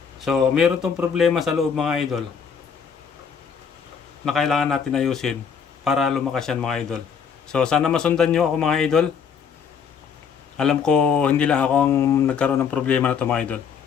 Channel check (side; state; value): right; quieter; 6.7 dB